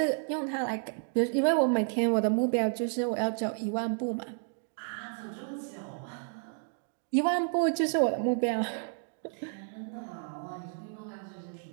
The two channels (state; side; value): silent; left; 57 dB below the other